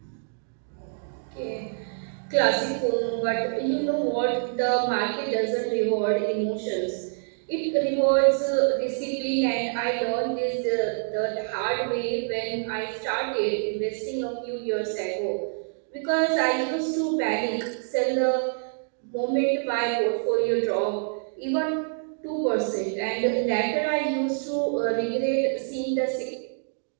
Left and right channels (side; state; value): left; silent; digital silence